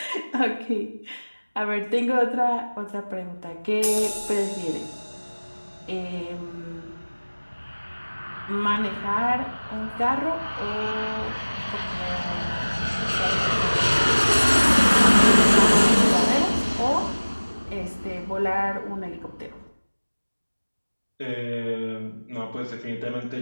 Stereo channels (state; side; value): inverted; both; correlation -1.00